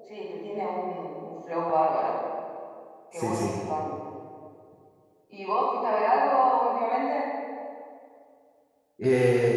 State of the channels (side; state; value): both; identical; correlation 1.00